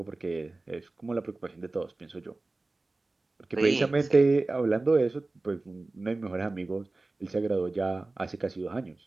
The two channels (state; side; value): quieter; left; 3.2 dB